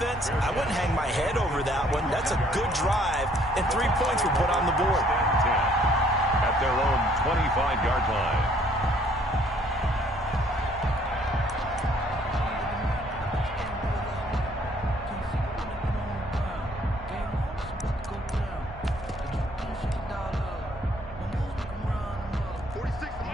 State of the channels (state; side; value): normal; both; correlation 0.62